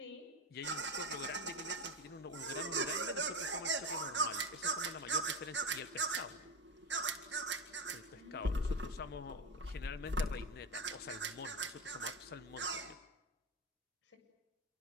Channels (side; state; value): both; normal; correlation 0.18